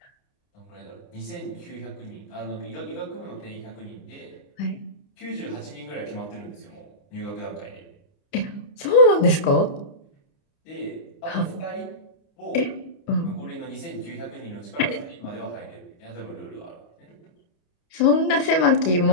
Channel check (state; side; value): late; right; 29 ms